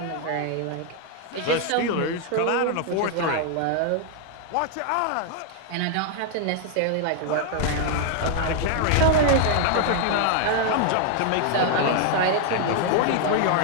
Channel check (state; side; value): different; both; correlation 0.00